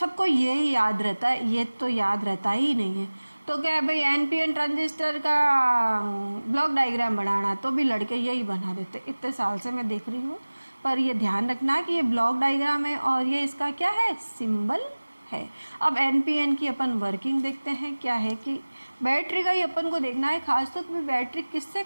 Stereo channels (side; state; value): both; inverted; correlation -1.00